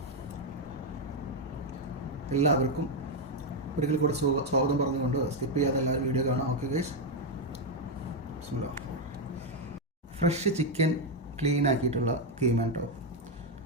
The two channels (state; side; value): normal; both; correlation 0.03